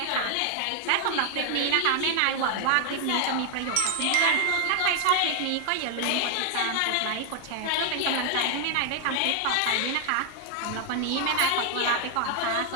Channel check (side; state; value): both; different; correlation 0.00